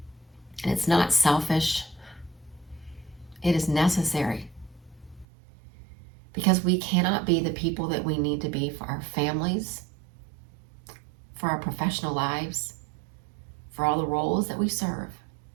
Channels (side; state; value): left; drops out; at 5.2 s